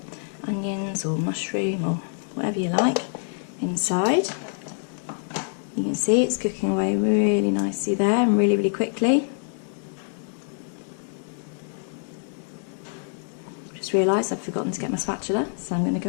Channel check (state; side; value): silent; right; 61 dB below the other